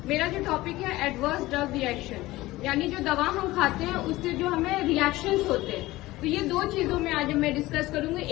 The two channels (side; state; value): right; quieter; 18.3 dB